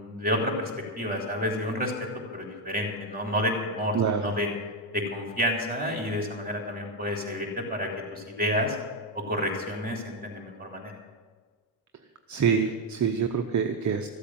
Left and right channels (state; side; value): normal; both; correlation 0.04